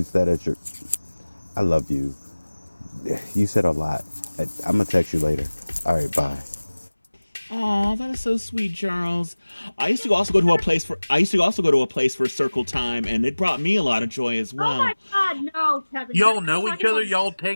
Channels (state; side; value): inverted; both; correlation -1.00